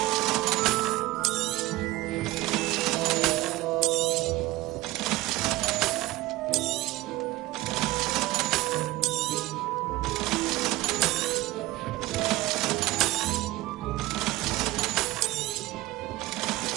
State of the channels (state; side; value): quieter; left; 18.3 dB